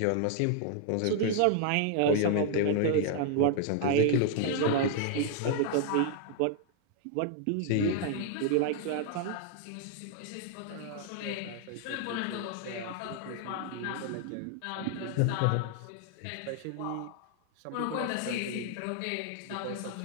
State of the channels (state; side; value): different; both; correlation 0.00